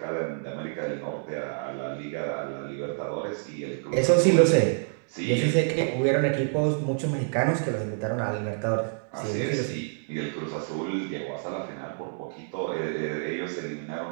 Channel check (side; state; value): left; silent; digital silence